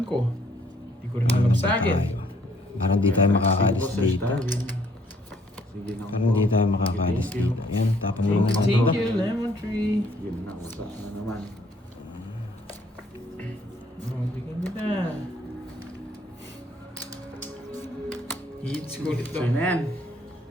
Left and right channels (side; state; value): both; normal; correlation 0.64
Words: ko? Hindi ko rin alam sa akin. Parang di tayo makakalis dito. Sige na. Parang di tayo makakalis dito. Yan, tapon mo na Thank dito. you, Lemon Tree. Yun na, usa na naman. Oh, bigyan kita. Hits ko ulit So to. yun na yan.